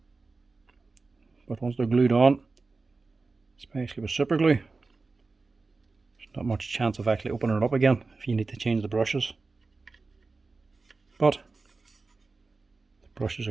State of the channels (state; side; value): quieter; left; 3.9 dB